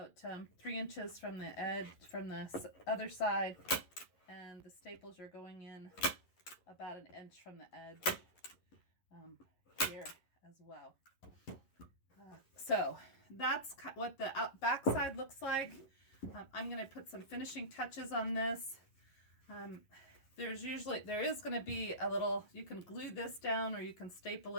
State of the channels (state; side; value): late; right; 11 ms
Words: 3 inches from the edge, from the other side, and the staples are going in about 1 inch from the edge here as well. So that's what the back side looks like. I'm going to put some finishing touches on this. There is going to be a little, you can glue this down or you can staple